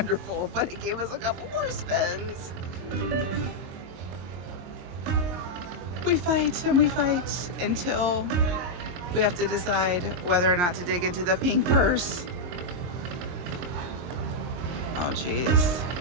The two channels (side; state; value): left; late; 22 ms